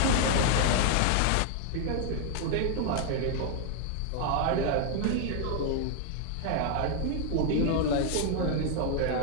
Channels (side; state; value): both; different; correlation 0.00